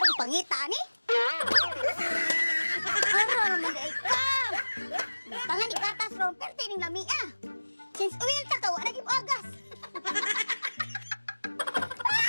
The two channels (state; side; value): inverted; both; correlation -1.00